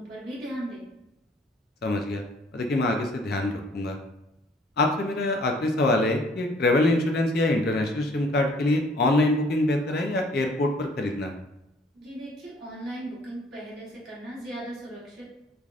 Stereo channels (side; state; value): both; normal; correlation 0.58